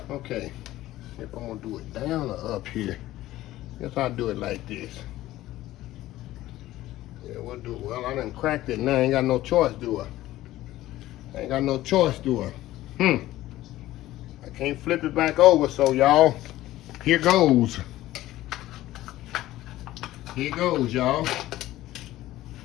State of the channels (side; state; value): right; quieter; 15.6 dB